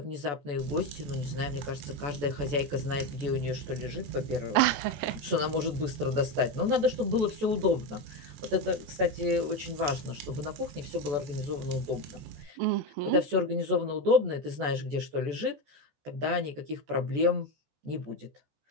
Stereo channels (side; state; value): left; late; 14 ms